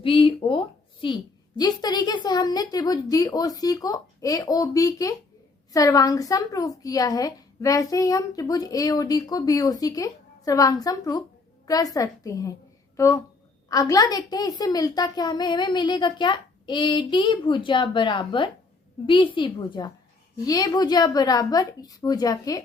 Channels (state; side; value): quieter; right; 3.8 dB